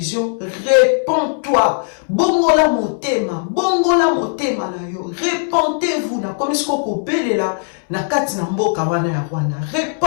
réponds-toi bongola motema na yo répentez-vous na komi sko kobelela na kati na mboka wana ya Rwanda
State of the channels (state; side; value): silent; right; 64 dB below the other